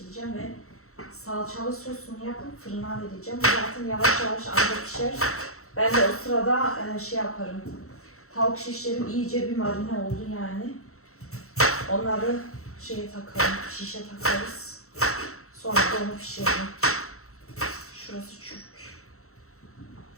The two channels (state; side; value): late; right; 0.63 ms